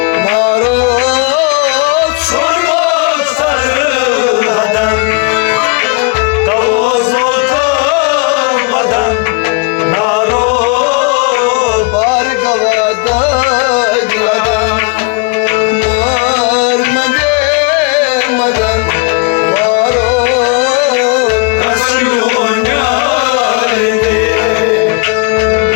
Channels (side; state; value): right; quieter; 29.3 dB